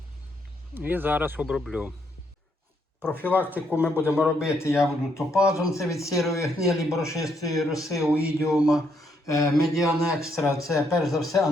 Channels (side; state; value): both; normal; correlation 0.74